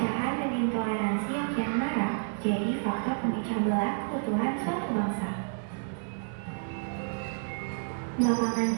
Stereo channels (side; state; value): left; silent; 58 dB below the other